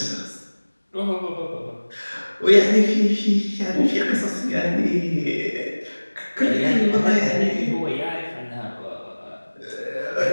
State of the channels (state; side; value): inverted; both; correlation -1.00